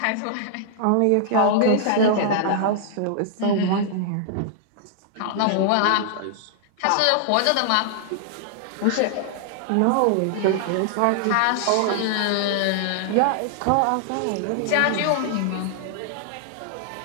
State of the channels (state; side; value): different; both; correlation -0.01